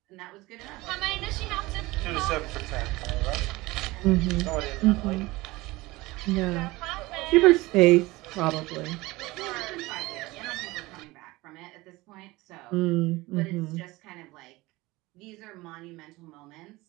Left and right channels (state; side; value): quieter; left; 20.6 dB